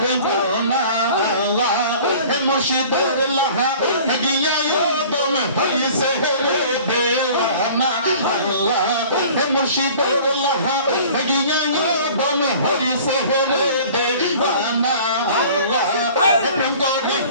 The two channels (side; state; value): both; inverted; correlation -0.46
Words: বোনা মুর্শিদের লাহা গিয়া দম হইছে রে দেওয়ানা মুর্শিদের লাহা গিয়া দম হইছে রে দেওয়ানা প্রেম করে